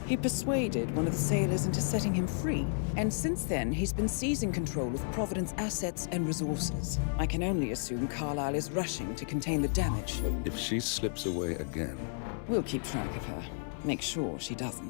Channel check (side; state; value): right; silent; digital silence